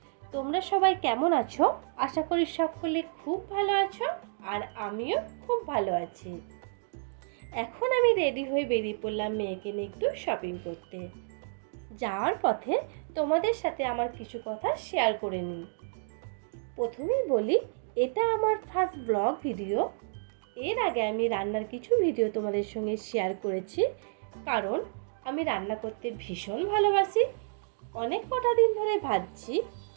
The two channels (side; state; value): left; silent; digital silence